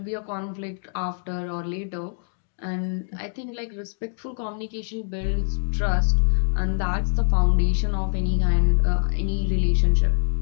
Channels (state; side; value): silent; right; digital silence